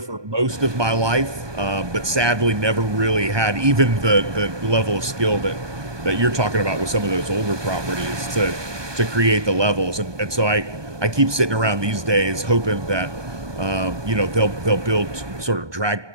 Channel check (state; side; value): late; left; 1.2 ms